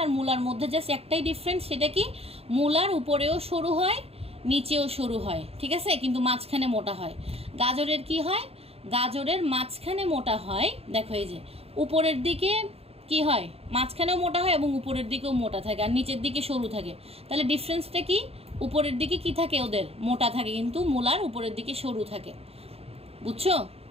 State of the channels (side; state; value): left; late; 0.29 ms